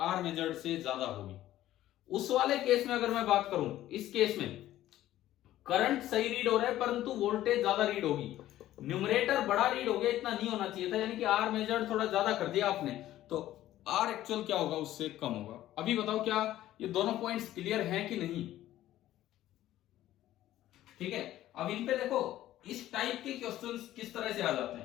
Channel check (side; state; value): right; quieter; 13.9 dB